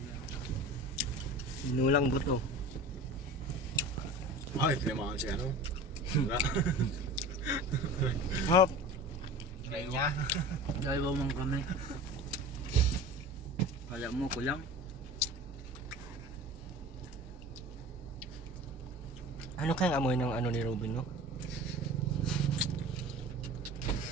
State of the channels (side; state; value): both; normal; correlation 0.36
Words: Inulang buto. Ay, tinamaan siya ano. Wala. Hop. Try niya. Dalawa mong kami. Kala mo, kulang. Ano kayang amoy ng ano ni Robin no?